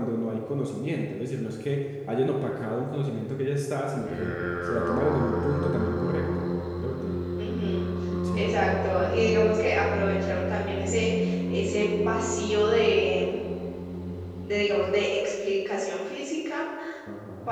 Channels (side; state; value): both; identical; correlation 1.00